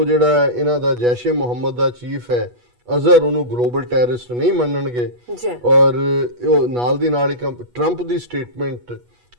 ਜਿਹੜਾ ਇਹਨਾਂ ਦਾ ਜੈਸ਼ ਏ ਮੁਹੰਮਦ ਦਾ ਚੀਫ ਹੈ ਅਜ਼ਹਰ ਉਹਨੂੰ ਗਲੋਬਲ ਟੈਰਰਿਸਟ ਨਹੀਂ ਮੰਨਣਗੇ। ਔਰ ਉਹ ਨਾਲ ਦੀ ਨਾਲ ਇੱਕ ਟਰੰਪ ਦੀ ਸਟੇਟਮੈਂਟ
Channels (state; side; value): late; left; 8.2 ms